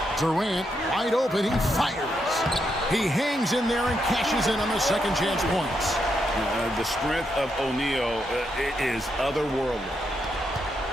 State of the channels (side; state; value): both; normal; correlation 0.81